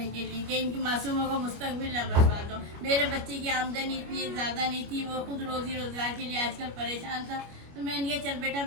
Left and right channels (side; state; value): left; late; 25 ms